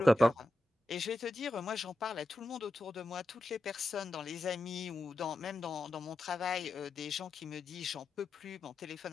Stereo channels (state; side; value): normal; both; correlation 0.90